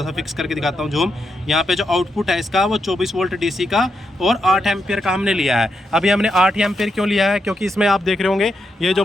सा फिक्स करके दिखाता हूँ जूम। यहाँ पे जो आउटपुट है इसका वो 24 वोल्ट डीसी का और 8 एम्पियर का हमने लिया है। अभी हमने 8 एम्पियर क्यों लिया है, क्योंकि इसमें आप देख रहे होंगे ये जो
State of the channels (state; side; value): normal; both; correlation 0.83